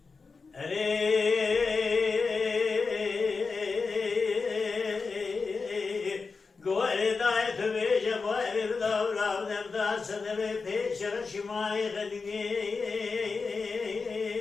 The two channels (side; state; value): right; quieter; 4.6 dB